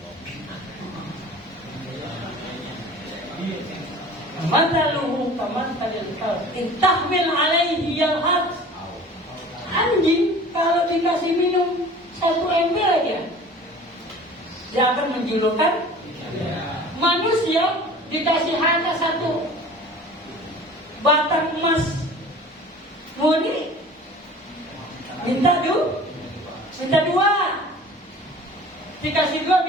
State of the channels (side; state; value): both; normal; correlation 0.43